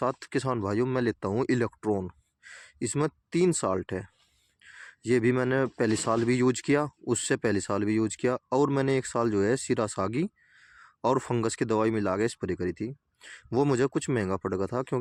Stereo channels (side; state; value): both; identical; correlation 1.00